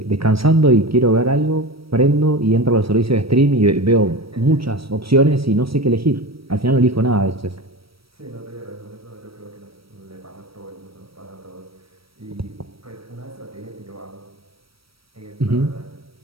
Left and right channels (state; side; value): late; left; 0.75 ms